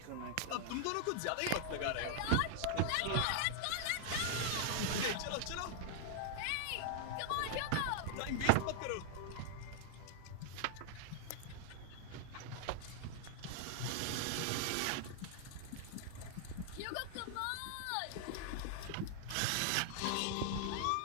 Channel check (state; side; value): different; both; correlation 0.00